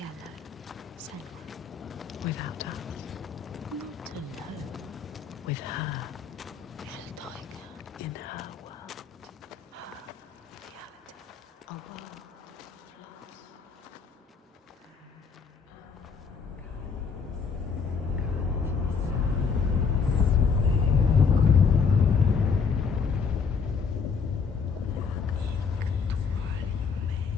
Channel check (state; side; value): quieter; right; 5.7 dB